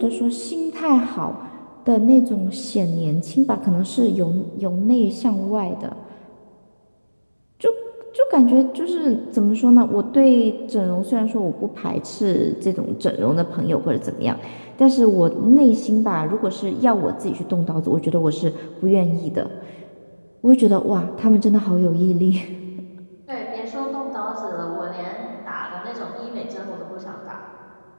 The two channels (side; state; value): both; inverted; correlation -1.00